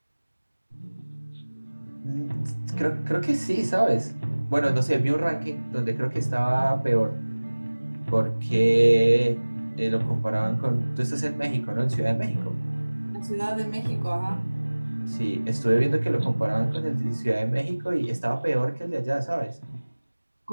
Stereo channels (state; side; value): inverted; both; correlation -1.00